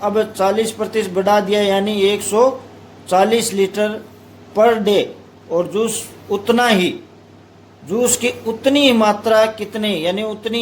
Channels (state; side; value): identical; both; correlation 1.00